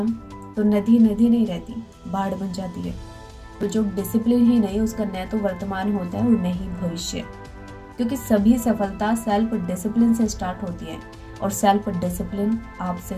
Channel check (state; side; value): identical; both; correlation 1.00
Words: तो नदी नदी नहीं रहती, बाढ़ बन जाती है। तो जो डिसिप्लिन ही नहीं, उसका न तो वर्तमान होता है और न ही भविष्य, क्योंकि सभी सफलता सेल्फ डिसिप्लिन से स्टार्ट होती है और सेल्फ डिसिप्लिन आपसे